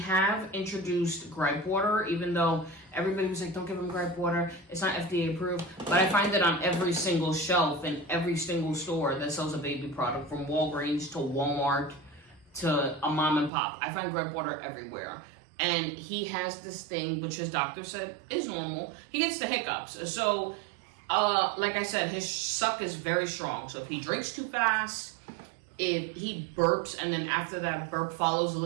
introduced gripe water, even though everybody was like, don't give him gripe water. It's not FDA approved. But I find it on every single shelf in every single store that sells a baby product, from Walgreens to Walmart to a mom and pop. I find gripe water everywhere. And he has this thing, which his doctor said is normal. He gets the hiccups. So, like I said, his suck is very strong. So if he drinks too fast, if he burps and then after that burp follows a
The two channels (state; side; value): drops out; left; at 13.5 s